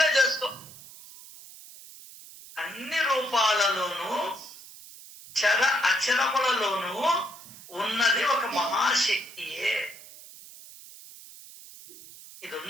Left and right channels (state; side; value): noise; right; hiss, 18 dB below the sound